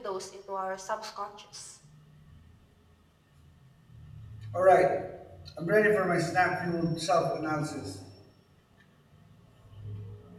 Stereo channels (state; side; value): identical; both; correlation 1.00